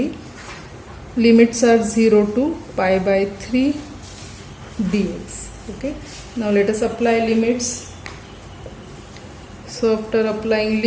Limits are 0 to pi by 3 dx. Okay, now let us apply limits. So after applying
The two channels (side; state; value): both; identical; correlation 1.00